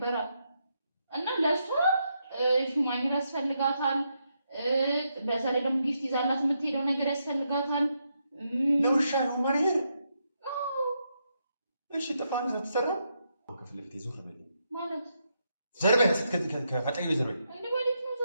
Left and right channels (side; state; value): both; inverted; correlation -0.81